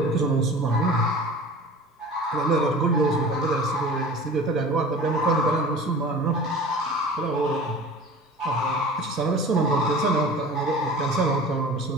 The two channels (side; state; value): both; normal; correlation 0.40